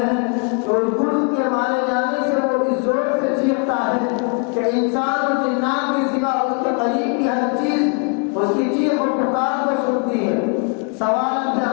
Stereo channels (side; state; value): right; quieter; 36.0 dB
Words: ہے کہ اس گرز کے مارے جانے سے وہ اس زور سے چیختا ہے کہ انسان اور جنات کے سوا اس کے قریب کی ہر چیز اس کی چیخ و پکار کو سنتی ہے۔ سوال اب